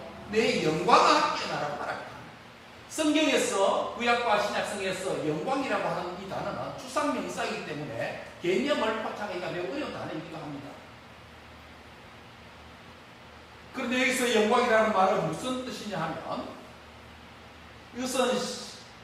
내 영광아 깨어나라고 말합니다. 성경에서 구약과 신약성에서 영광이라고 하는 이 단어는 추상명사이기 때문에 개념을 파악하기가 매우 어려운 단어이기도 합니다. 그런데 여기서 영광이라는 말은 무슨 뜻이냐 하면 이것은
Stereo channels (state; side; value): identical; both; correlation 1.00